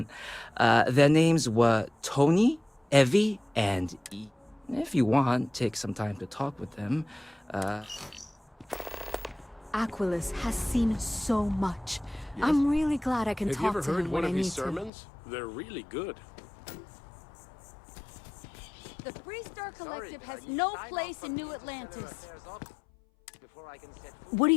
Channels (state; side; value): drops out; right; at 14.9 s